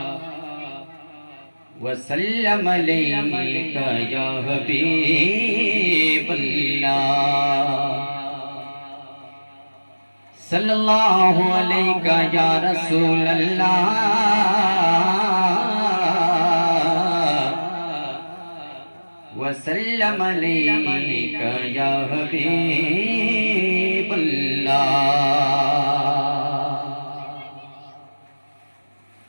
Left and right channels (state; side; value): inverted; both; correlation -1.00